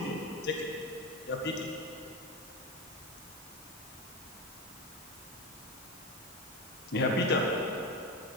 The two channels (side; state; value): both; normal; correlation 0.19